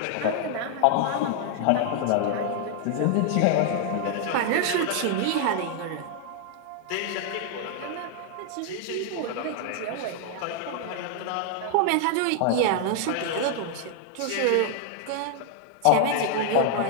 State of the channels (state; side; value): different; both; correlation 0.00